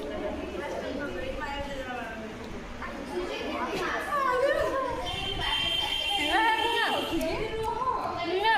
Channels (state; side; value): identical; both; correlation 1.00